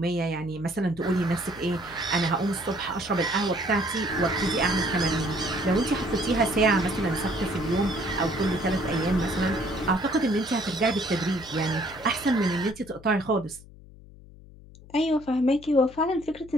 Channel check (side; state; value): left; noise; hum, 20 dB below the sound